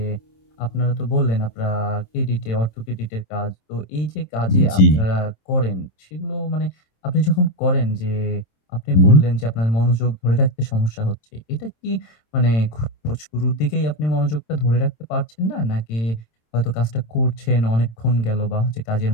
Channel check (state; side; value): late; right; 27 ms